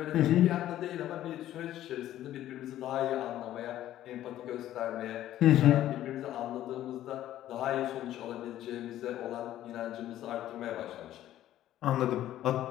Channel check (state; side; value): quieter; right; 13.0 dB